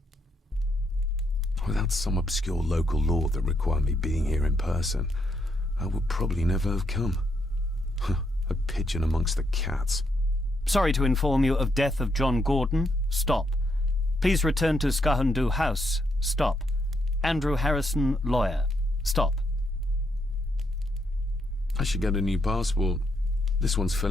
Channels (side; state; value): both; normal; correlation 0.77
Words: Without some obscure local law that required me being here in person, I would probably never have come. A pigeon amongst the cats. Sorry to inform you of death of John Gordon. Stop. Please return to Skahundu House. Stop. Andrew Harrison, lawyer. Stop. I should get a new passport. This one's